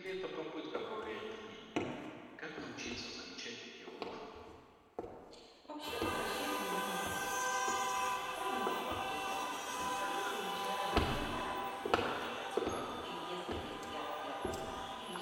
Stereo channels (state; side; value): identical; both; correlation 1.00